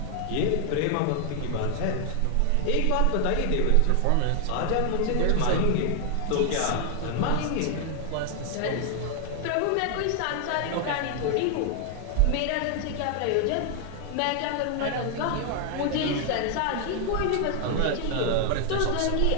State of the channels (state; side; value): different; both; correlation 0.00